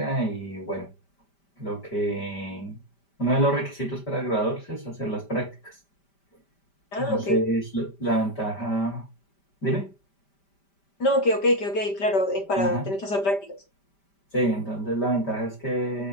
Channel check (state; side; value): late; right; 5.1 ms